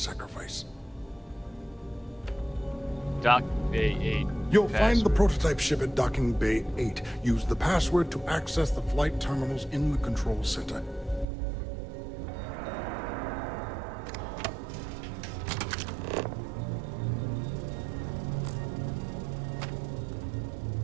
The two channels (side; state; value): left; drops out; at 11.2 s